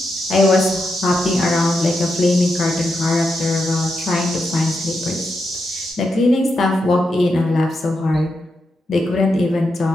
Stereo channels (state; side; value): normal; both; correlation 0.85